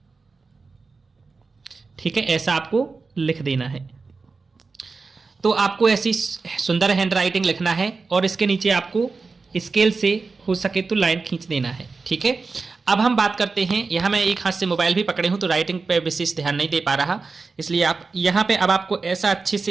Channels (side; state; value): left; quieter; 4.3 dB